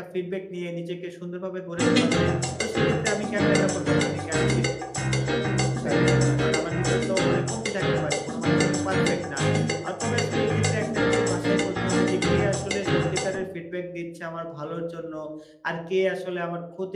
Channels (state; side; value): identical; both; correlation 1.00